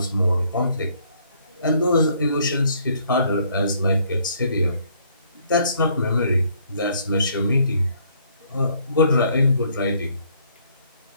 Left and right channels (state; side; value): inverted; both; correlation -0.66